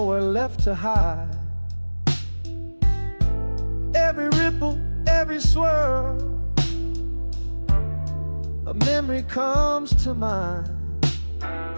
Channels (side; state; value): both; inverted; correlation -1.00